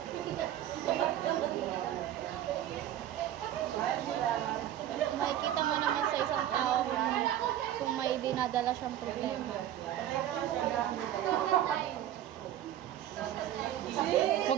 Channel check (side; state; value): left; quieter; 11.9 dB